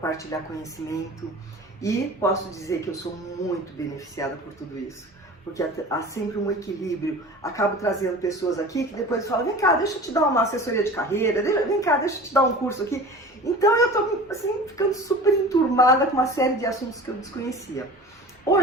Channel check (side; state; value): both; normal; correlation 0.38